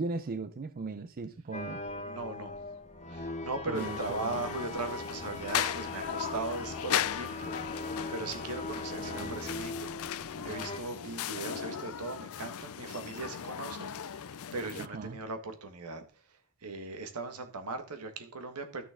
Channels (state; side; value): normal; both; correlation -0.04